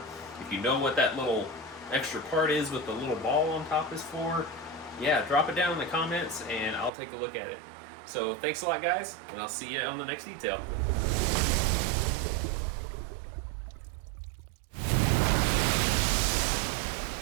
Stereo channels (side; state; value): left; drops out; at 6.9 s